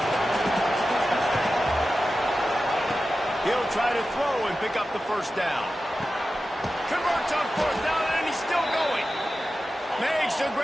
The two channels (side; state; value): both; normal; correlation 0.93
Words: He'll try to throw and pick up the first down. Converts on fourth down, and he's still going. Makes the